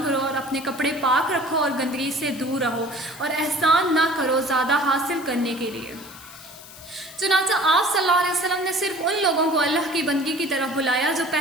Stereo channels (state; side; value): noise; left; hiss, 18 dB below the sound